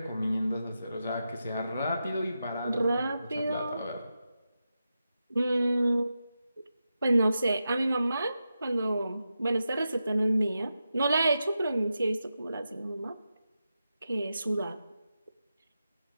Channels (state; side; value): inverted; both; correlation -0.89